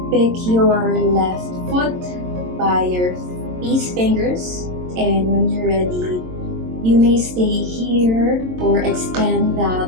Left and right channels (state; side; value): late; left; 22 ms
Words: pick your left foot by your peace fingers. And when you're ready, you may stay here or extend that